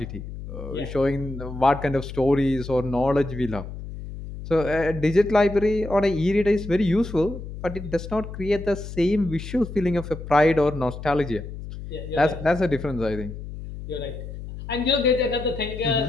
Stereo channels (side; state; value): left; noise; hum, 10 dB below the sound